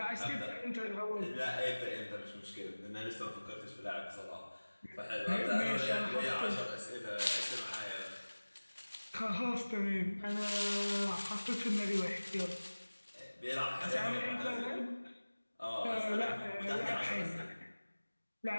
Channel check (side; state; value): both; inverted; correlation -1.00